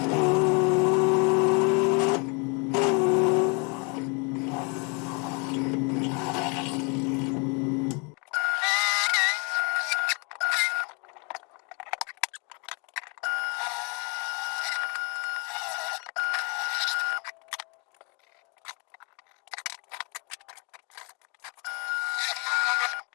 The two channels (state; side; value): quieter; right; 33.1 dB